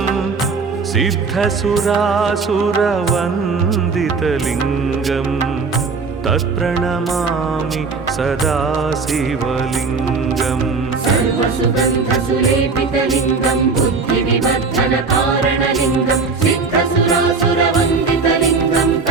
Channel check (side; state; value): left; quieter; 4.5 dB